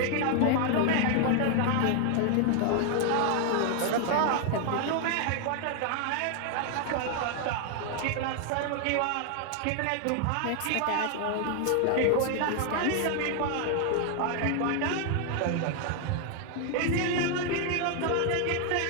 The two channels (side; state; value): both; different; correlation 0.00